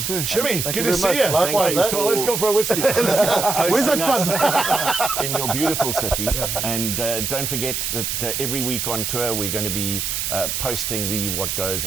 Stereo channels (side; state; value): right; noise; hiss, 2 dB below the sound